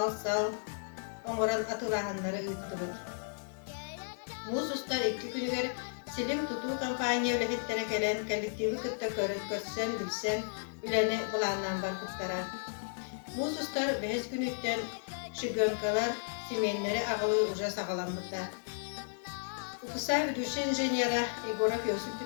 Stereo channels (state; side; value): silent; right; 55 dB below the other